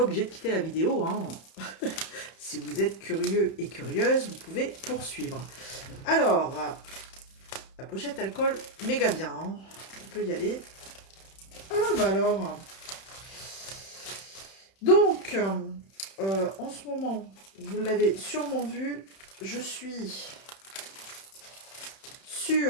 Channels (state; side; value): late; right; 31 ms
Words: de quitter la vidéo, hein. Si vous êtes curieux et curieuse, vous pouvez poursuivre. Alors, la pochette elle colle méga bien, hein. On peut y aller. Ah bah alors, donc en ce moment, vous l'avez sûrement vu, je suis